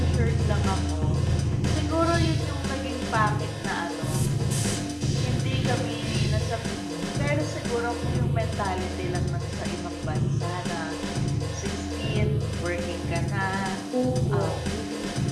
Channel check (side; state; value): both; identical; correlation 1.00